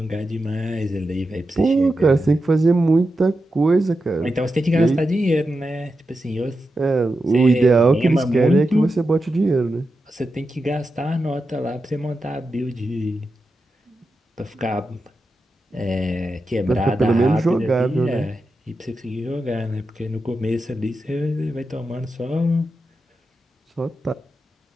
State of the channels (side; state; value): both; normal; correlation 0.89